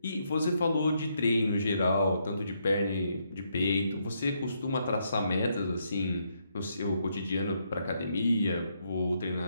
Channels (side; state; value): both; inverted; correlation -0.76